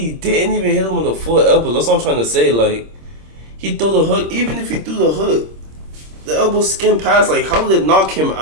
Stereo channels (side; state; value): left; late; 26 ms